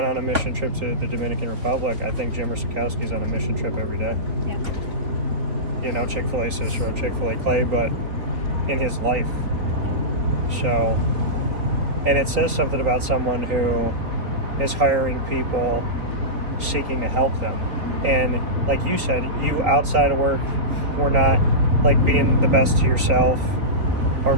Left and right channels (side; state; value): left; late; 3.6 ms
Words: on a mission trip to the Dominican Republic. I think Jimmer Sikowski's on a mission trip every day. Yeah. Chick-fil-A Cicero Chick-fil-A Clay, but in his life. So, and it says something about someone who is hiring people seeking to help them. And like you said, you outside of work were not like being the best to yourself or